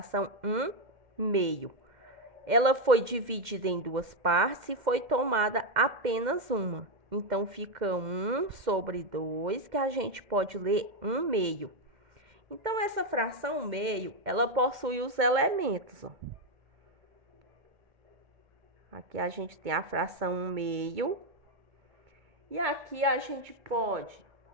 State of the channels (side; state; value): left; late; 2.1 ms